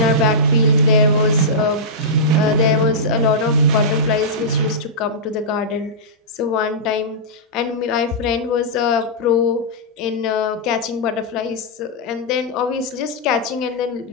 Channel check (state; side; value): normal; both; correlation -0.13